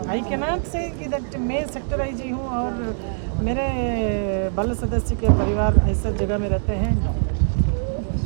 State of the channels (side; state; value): left; silent; digital silence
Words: I can not से कि दैट मैं सेक्टर आईजी हूँ और मेरे बाल सदस्य के परिवार ऐसे जगह में रहते हैं।